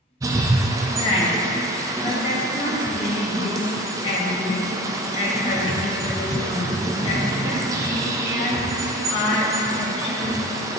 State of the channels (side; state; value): both; normal; correlation 0.39